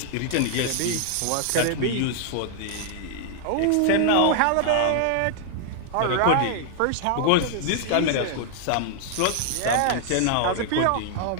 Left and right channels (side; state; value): both; different; correlation 0.00